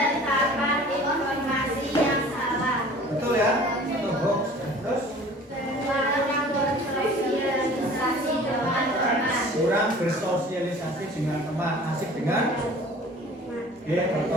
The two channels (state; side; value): normal; both; correlation 0.46